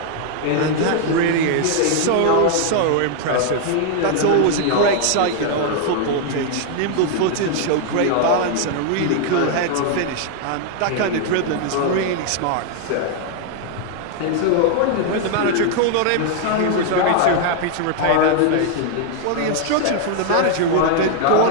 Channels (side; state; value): both; different; correlation 0.00